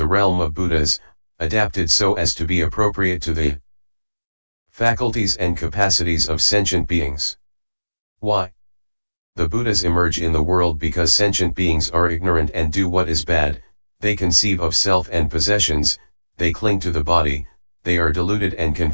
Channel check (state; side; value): inverted; both; correlation -1.00